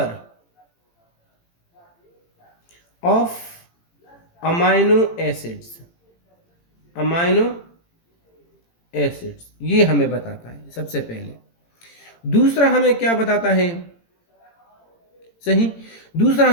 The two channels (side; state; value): right; late; 18 ms